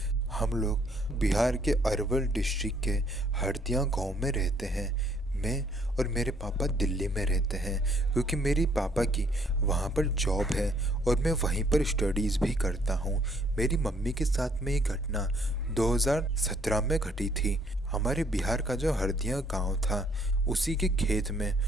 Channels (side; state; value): both; normal; correlation 0.65